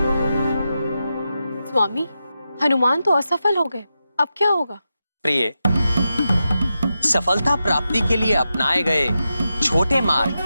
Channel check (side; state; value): both; inverted; correlation -0.89